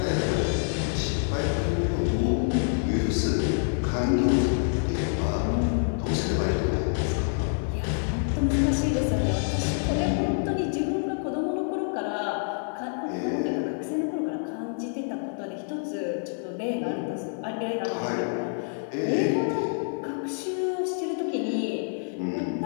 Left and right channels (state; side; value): silent; right; 60 dB below the other